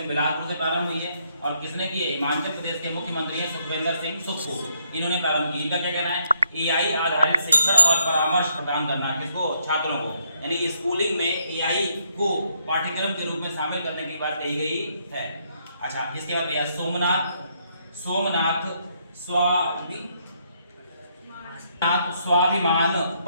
बिलासपुर से प्रारंभ हुई है। और किसने की है? हिमाचल प्रदेश के मुख्यमंत्री हैं सुखविंदर सिंह सुक्खू, इन्होंने प्रारंभ की। इनका क्या कहना है? एआई आधारित शिक्षण और परामर्श प्रदान करना किसको? छात्रों को। यानी स्कूलिंग में एआई को पाठ्यक्रम के रूप में शामिल करने की बात कही गई है। अच्छा, इसके बाद भैया सोमनाथ स्वाभिमान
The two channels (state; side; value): inverted; both; correlation -0.73